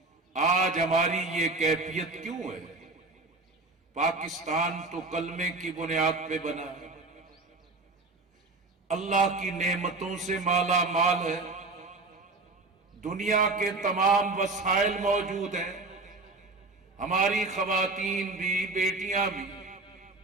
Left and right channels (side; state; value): left; quieter; 3.4 dB